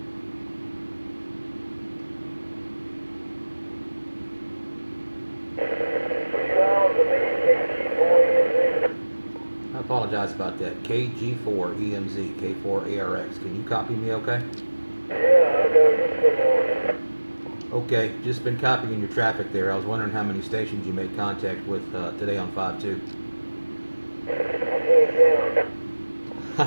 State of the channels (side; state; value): both; inverted; correlation -1.00